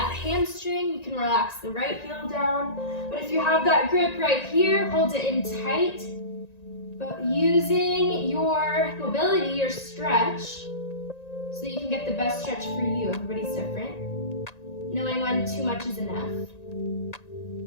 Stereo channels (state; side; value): late; right; 1.9 ms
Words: hamstring. You can relax the right heel down. But if you have that grip right here, hold it in tight. But using your mobility, your stretch, so that you can get the best stretch for you. Everybody's different. Knowing when too much is enough.